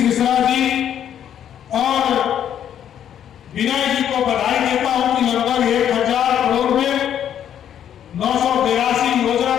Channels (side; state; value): right; quieter; 9.8 dB